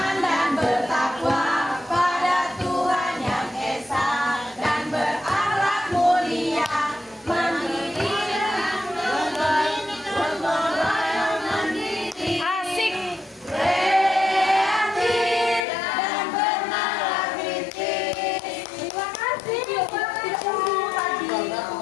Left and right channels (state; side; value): drops out; right; at 15.7 s